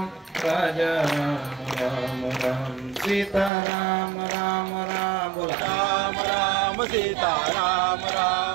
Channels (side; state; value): left; drops out; at 3.5 s